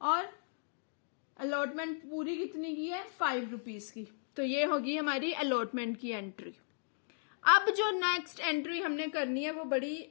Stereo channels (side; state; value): right; silent; digital silence